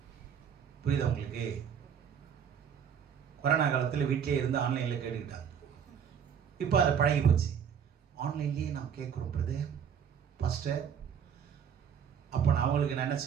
புரியுதா உங்களுக்கு? கொரோனா காலத்தில் வீட்டிலே இருந்து ஆன்லைனில் கேட்டுக்கிட்டாங்க. இப்போ அதை பழகி போச்சு. ஆன்லைன்லேயே நாம் கேட்குறோம் பிரதர், பாஸ்டர். அப்போ நான் அவங்களுக்கு நான் என்ன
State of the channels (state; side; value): quieter; left; 7.9 dB